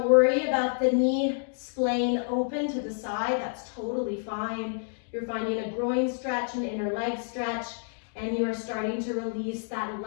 worry about the knee splaying open to the side. That's totally fine. You're finding a groin stretch, an inner leg stretch, and you are starting to release that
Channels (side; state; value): right; silent; 59 dB below the other